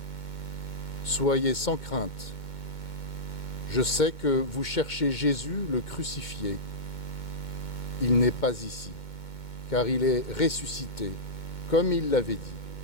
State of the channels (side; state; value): right; late; 2.2 ms